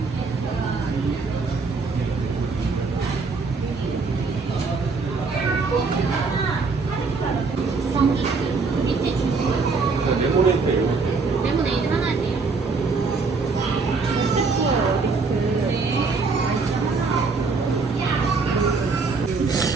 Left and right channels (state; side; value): quieter; left; 4.3 dB